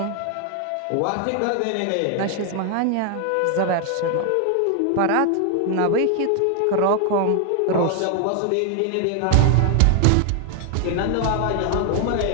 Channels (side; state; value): both; different; correlation 0.00